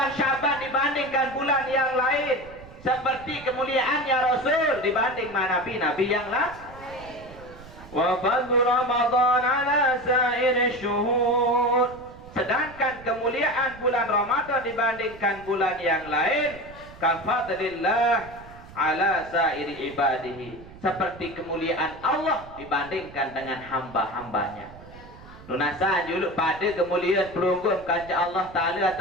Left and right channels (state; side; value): noise; right; rumble, 19 dB below the sound